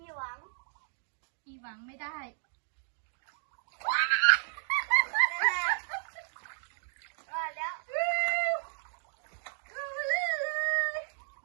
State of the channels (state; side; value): silent; left; digital silence